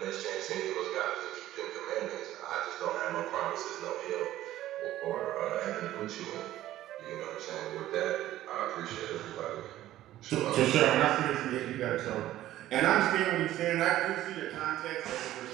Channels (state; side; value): quieter; left; 14.1 dB